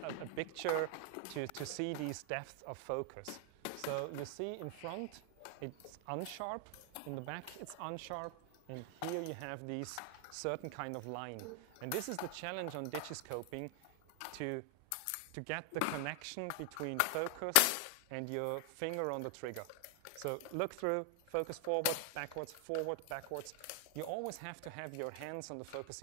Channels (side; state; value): both; different; correlation 0.00